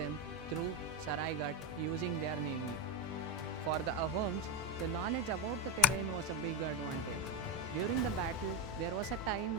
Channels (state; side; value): normal; both; correlation 0.09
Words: through Saraighat using their navy. For the Ahoms, the knowledge about the terrain was a big advantage. During the battle, there was a